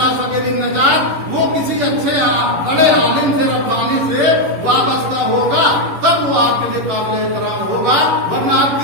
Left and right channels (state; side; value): late; left; 11 ms